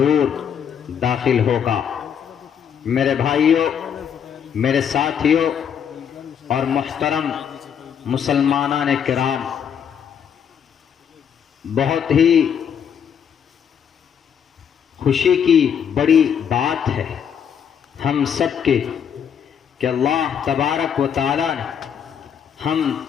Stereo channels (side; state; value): right; quieter; 8.0 dB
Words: داخل ہوگا۔ میرے بھائیوں، میرے ساتھیوں اور محترم مسلمانان کرام، بہت ہی خوشی کی بڑی بات ہے ہم سب کے کہ اللہ تبارک و تعالی نے ہم